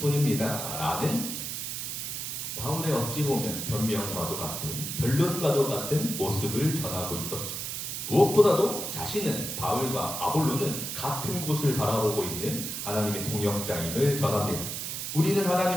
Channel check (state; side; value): noise; right; hiss, 4 dB below the sound